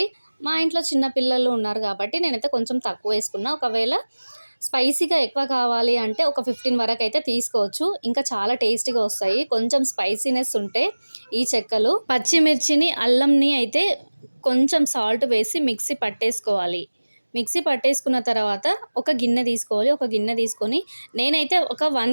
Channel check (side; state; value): both; inverted; correlation -1.00